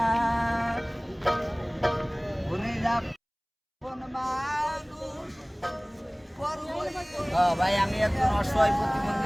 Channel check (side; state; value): both; identical; correlation 1.00